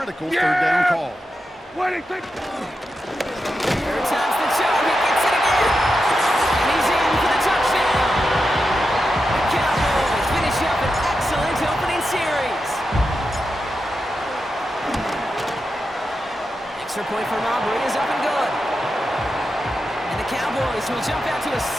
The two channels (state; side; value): normal; both; correlation 0.88